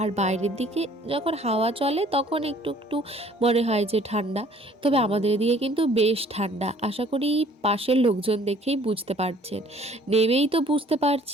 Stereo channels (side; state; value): both; normal; correlation 0.56